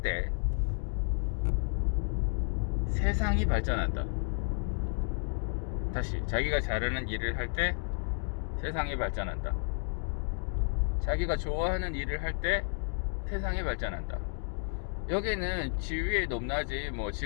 때 세상이 발전한다. 다시, 자기가 잘하는 일을 할 때 세상이 발전한다. 자기가 좋아하는 일을 할 때 세상이 발전한다. 여기는 지위의 높낮이, 뭐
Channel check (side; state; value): right; silent; 57 dB below the other